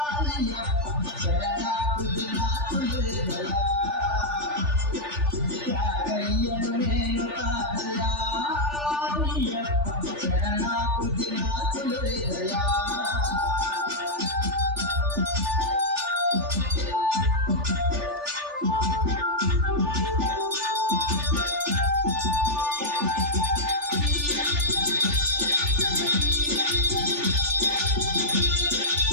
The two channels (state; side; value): late; left; 3.4 ms